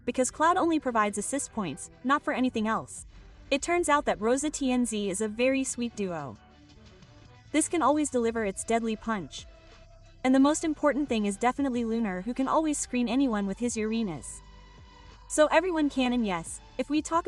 because Cloud only provides assist points, not for anything else. It turns out that Rosa TNZ is a very sweet duo. This can always deliver its deadly punch. And the most important thing is definitely Lunar, who can always screen anyone with his Uranus. So everyone can, and yes, if we talk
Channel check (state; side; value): identical; both; correlation 1.00